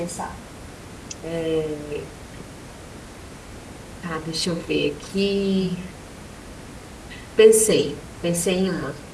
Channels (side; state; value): both; identical; correlation 1.00